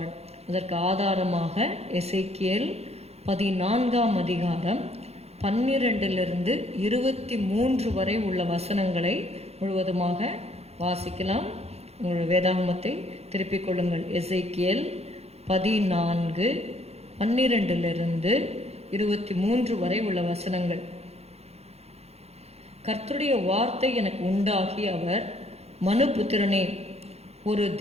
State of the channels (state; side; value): late; left; 0.30 ms